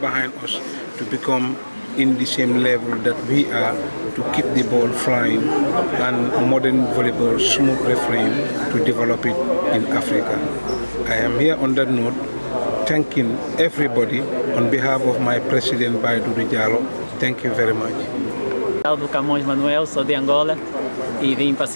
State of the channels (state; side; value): inverted; both; correlation -1.00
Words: us to become in the same level that we are, to keep the ball flying and modern volleyball smooth refereeing to develop it in Africa. I am here on that note, thanking everybody on behalf of my president, Baiduri Diallo. Thank you very much. Do Camões Manuel, sou de Angola e vim